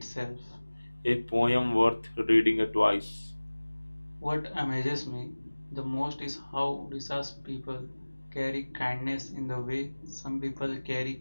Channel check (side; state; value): both; inverted; correlation -1.00